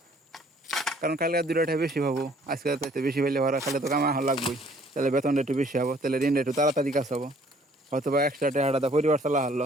কারণ কালকে 2 টাকা বেশি পাবো, আজকে তাইতে বেশি পাইলে ভরা খালে তো কামা লাগবেই, তাহলে বেতনটা একটু বেশি হবো, তাহলে ঋণটা একটু তাড়াতাড়ি কাজ হবো, হয়তো বা এক্সট্রা টাকাটা পরিবার চালা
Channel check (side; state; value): both; normal; correlation 0.59